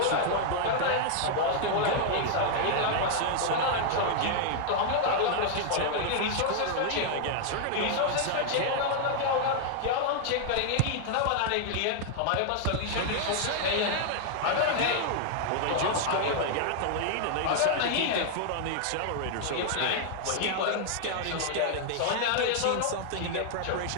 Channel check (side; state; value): both; different; correlation 0.00